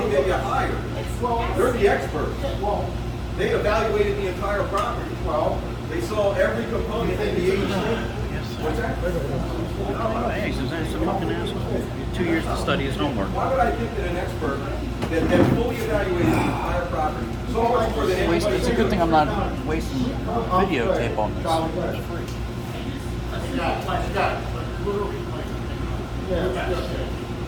they get hired. Well, They're the experts. well, They evaluated the entire property. well, They saw every component in the HOA. What's that? Hey, Suzanne's a fucking asshole. 2 years to study his homework. Why would I think that an expert that fully evaluated the entire property, so much more than anybody? It's a good thing I'm not wasting videotape on this. We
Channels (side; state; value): both; identical; correlation 1.00